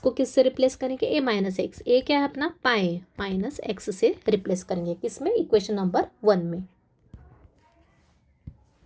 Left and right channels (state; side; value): identical; both; correlation 1.00